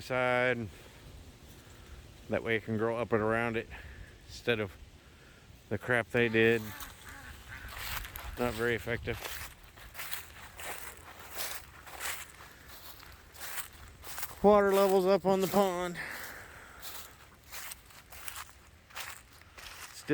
side. That way it can grow up and around it instead of the crap they did. Not very effective. Water levels up on the pond.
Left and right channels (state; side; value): identical; both; correlation 1.00